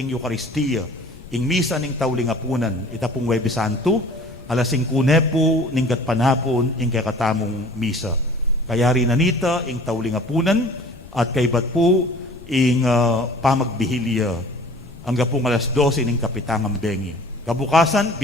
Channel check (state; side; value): noise; left; rumble, 20 dB below the sound